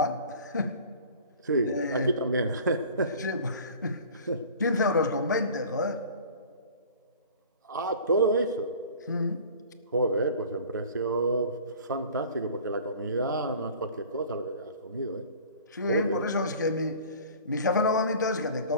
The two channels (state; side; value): inverted; both; correlation -0.44